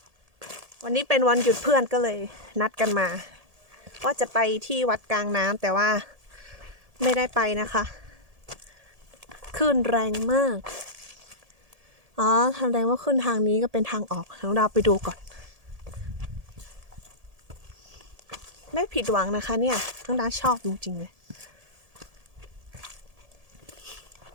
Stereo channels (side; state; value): left; late; 1.8 ms